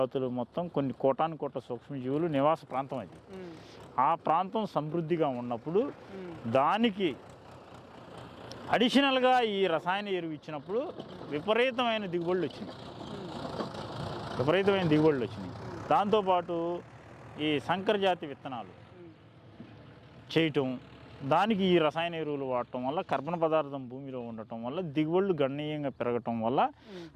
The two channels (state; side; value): identical; both; correlation 1.00